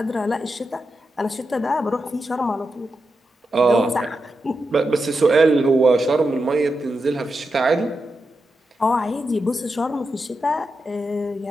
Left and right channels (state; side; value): normal; both; correlation 0.88